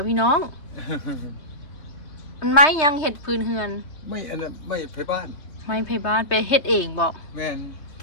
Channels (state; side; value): late; right; 3.3 ms